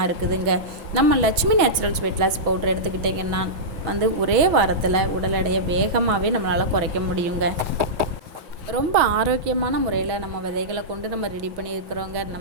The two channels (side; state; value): left; late; 6.2 ms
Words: இருக்குதுங்க. நம்ம Lakshmi Naturals weight loss powder எடுத்துக்கிட்டிங்கன்னா ஒரே வாரத்தில் உடல் எடையை வேகமாகவே நம்மளால் குறைக்க முடியுங்க. ரொம்ப ஆரோக்கியமான முறையில் நம்ம விதைகளை கொண்டு நம்ம ரெடி பண்ணியிருக்கிறோங்க.